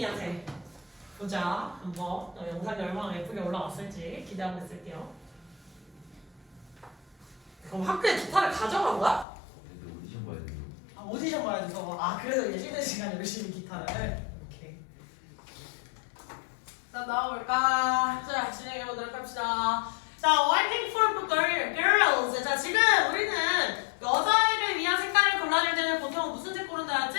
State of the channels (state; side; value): drops out; right; at 9.2 s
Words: 보자 한번 영상이 얼마나 예쁘게 올라왔을지 기대하고 있을게요. 그럼 학교에 기타를 가져간 거야? 근데 오디션 봐야 돼요. 아 오디션 봐야 돼서 아 그래서 이제 쉬는 시간에 열심히 기타를 오케이. 자 나와볼까? 자 진행해보도록 합시다. 자 waiting for girls. 자 지금 우리는 여자애를 위한 색깔을 골라줄 때는 보통 무슨 색 고른다 했지?